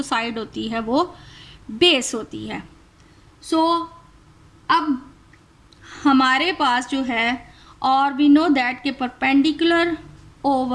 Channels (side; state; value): both; identical; correlation 1.00